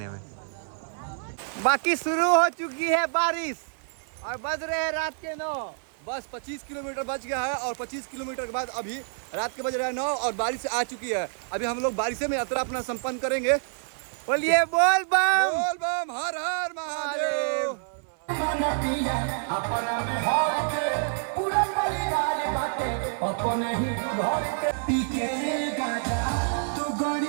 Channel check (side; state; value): left; silent; digital silence